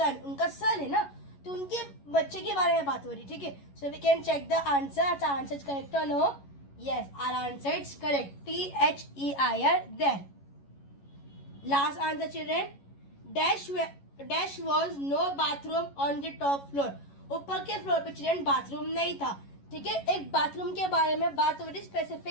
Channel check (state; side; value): late; right; 11 ms